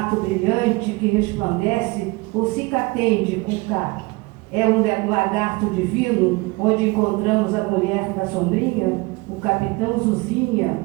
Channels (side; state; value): left; quieter; 24.7 dB